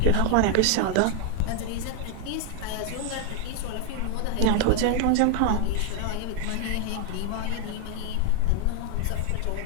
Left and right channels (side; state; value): both; different; correlation 0.01